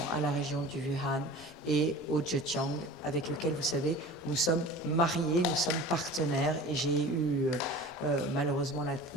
à la région du Wuhan et au Zhejiang, avec lequel, vous savez, nous sommes mariés, nous sommes partenaires. Et j'ai eu malheureusement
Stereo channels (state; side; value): normal; both; correlation 0.39